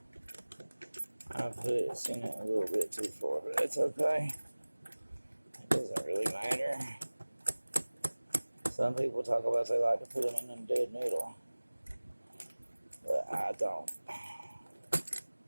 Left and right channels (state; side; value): inverted; both; correlation -1.00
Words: I put it in it a little bit too far, but that's okay. It doesn't really matter. Some people talk about they like to put them in the dead middle, but I don't.